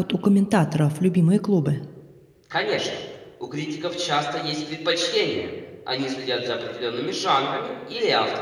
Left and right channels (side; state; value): both; identical; correlation 1.00